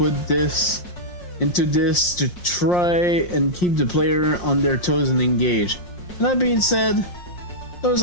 this into this to try and keep the player on their toes and engaged. And that being said, those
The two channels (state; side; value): late; right; 5.6 ms